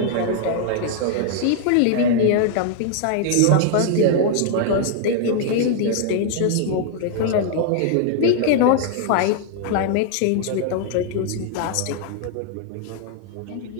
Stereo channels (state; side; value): different; both; correlation 0.00